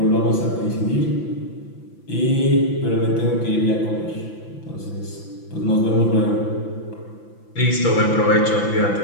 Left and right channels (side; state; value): right; late; 5.9 ms